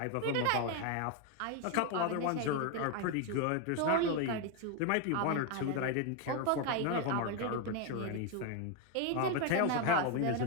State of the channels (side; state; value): both; different; correlation 0.01